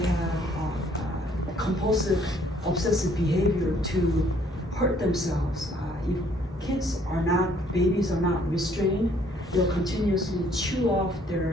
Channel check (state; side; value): normal; both; correlation 0.62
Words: compulsive, obsessive behavior to hurt themselves. If babies are not restrained, they'll continuously chew off